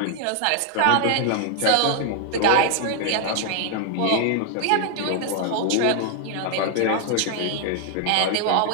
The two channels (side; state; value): both; different; correlation 0.00